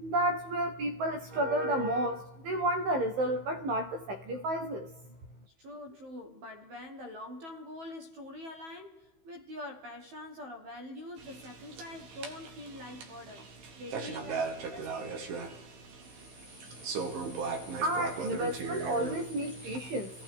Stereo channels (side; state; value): left; late; 15 ms